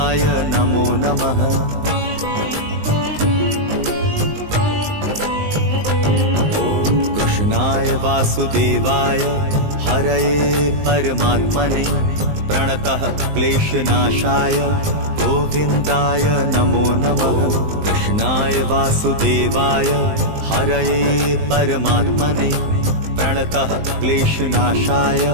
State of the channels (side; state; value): left; late; 19 ms